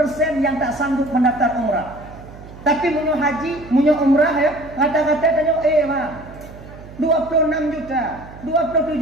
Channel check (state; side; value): noise; right; hum, 17 dB below the sound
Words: yang tak sanggup mendaftar umrah. Tapi munyo haji, munyo umrah ya, kata-kata tanyo bang 26 juta,